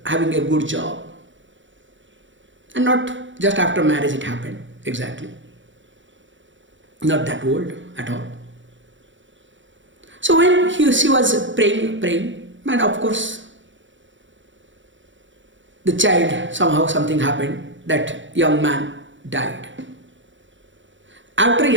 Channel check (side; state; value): left; late; 0.55 ms